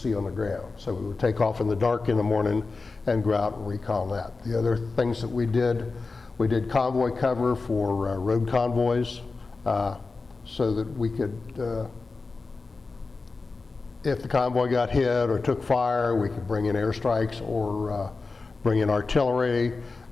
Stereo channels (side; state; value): right; quieter; 4.0 dB